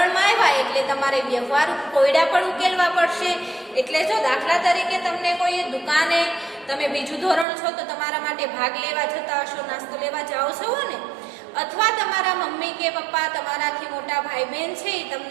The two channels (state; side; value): drops out; left; at 7.5 s